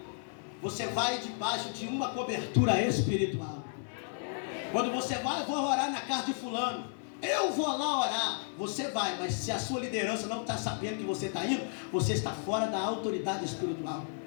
você vai debaixo de uma cobertura espiritual. Quando você vai, eu vou orar na casa de fulano, eu vou lá orar, você vai, mas se a sua liderança não está sabendo que você está indo, você está fora da autoridade espiritual,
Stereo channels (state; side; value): silent; right; 56 dB below the other